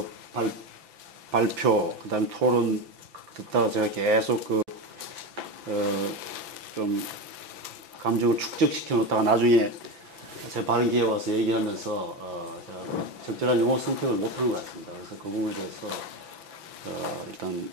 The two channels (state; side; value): late; left; 5.9 ms